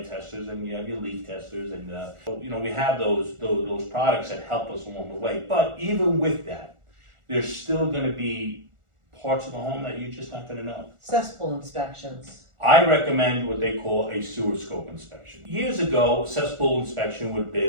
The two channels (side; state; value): left; late; 1.4 ms